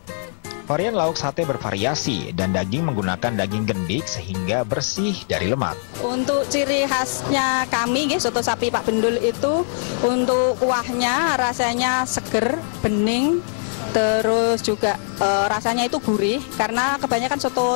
Varian lauk sate bervariasi dan daging menggunakan daging gendik sehingga bersih dari lemak. Untuk ciri khasnya kami, soto sapi Pak Bendul itu untuk kuahnya rasanya seger, bening, Terus juga rasanya itu gurih karena kebanyakan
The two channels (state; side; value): silent; right; 65 dB below the other